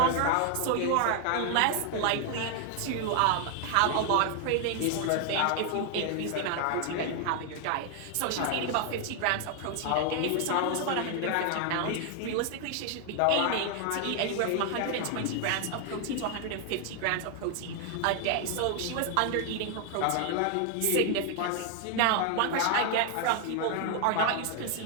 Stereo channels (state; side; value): different; both; correlation 0.00